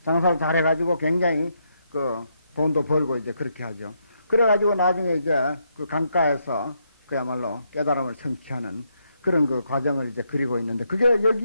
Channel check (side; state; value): both; inverted; correlation -0.77